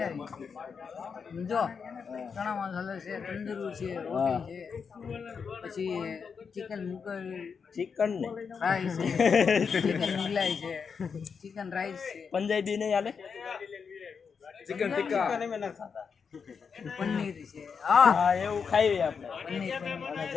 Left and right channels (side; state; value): right; quieter; 6.0 dB